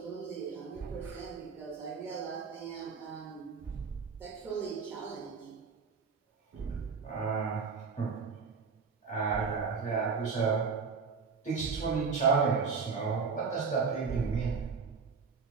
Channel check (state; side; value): quieter; left; 5.3 dB